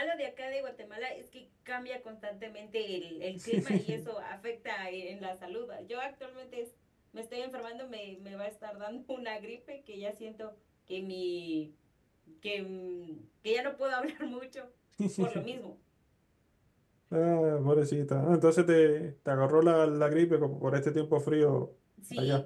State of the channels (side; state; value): both; identical; correlation 1.00